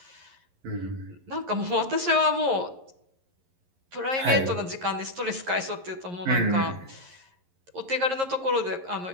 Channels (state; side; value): late; left; 11 ms